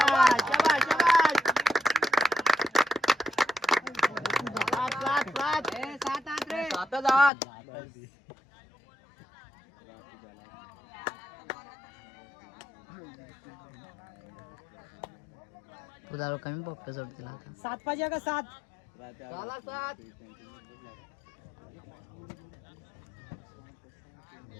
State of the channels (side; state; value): right; drops out; at 7.3 s